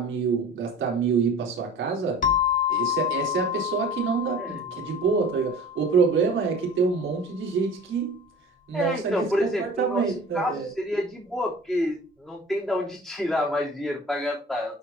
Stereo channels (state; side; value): normal; both; correlation 0.41